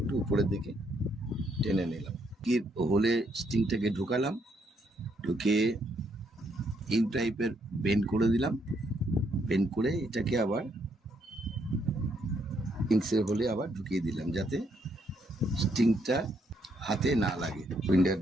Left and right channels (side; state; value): both; normal; correlation 0.74